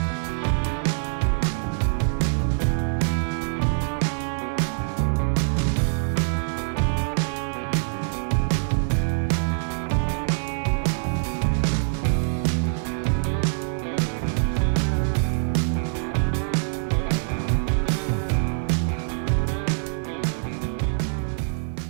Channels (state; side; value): silent; left; digital silence